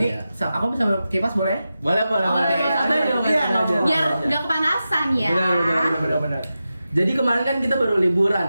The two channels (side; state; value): both; inverted; correlation -0.92